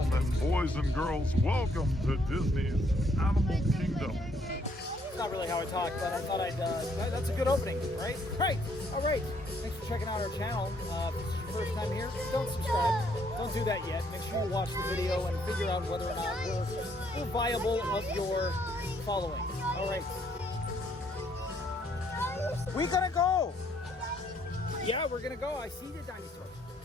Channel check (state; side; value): normal; both; correlation 0.68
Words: boys and girls, welcome to Disney's Animal Kingdom. It's not really how I talk, but I thought that's a good opening, right? Right, all right. Thanks for checking out our channel. If this is your first time here, don't subscribe. Don't do that yet. Make sure you watch the video and figure out whether or not we're viable of your following. All right. We gonna go. Yeah, we're gonna go. I see the dinosaurs.